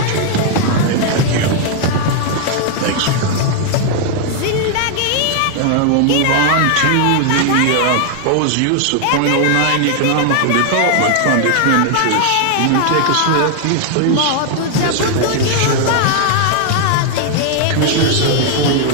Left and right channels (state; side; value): different; both; correlation 0.00